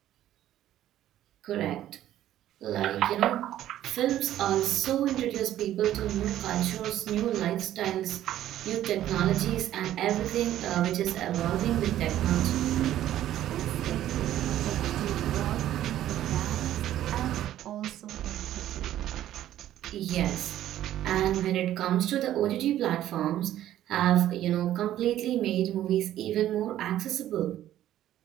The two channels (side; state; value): left; quieter; 12.6 dB